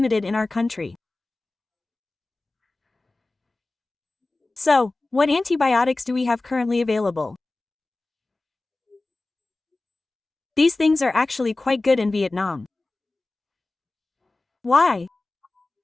in our country. So, what antibiotics do we have currently available? These things are actually quite good in Vietnam. Why?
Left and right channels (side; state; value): right; quieter; 3.1 dB